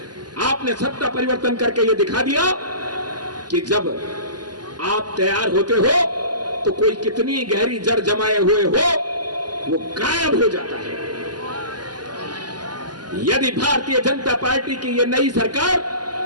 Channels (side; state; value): left; late; 0.70 ms